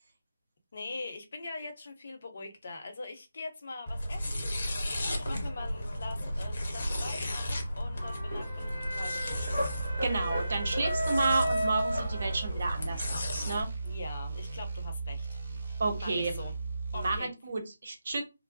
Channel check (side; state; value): both; inverted; correlation -0.88